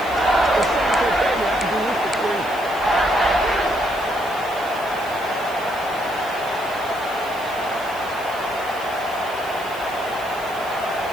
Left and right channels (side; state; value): right; noise; hiss, 18 dB below the sound